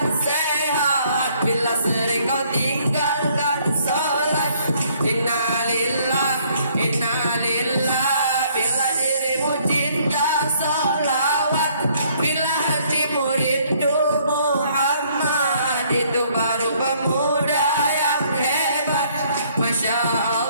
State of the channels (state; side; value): inverted; both; correlation -0.64